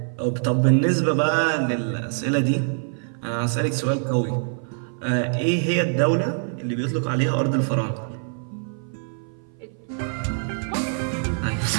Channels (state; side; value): silent; left; 56 dB below the other